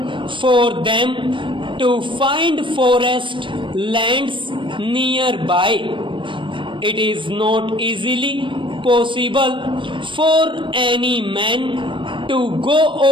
for them to find forest lands nearby. It is not easily possible for any man to go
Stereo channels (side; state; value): left; late; 0.24 ms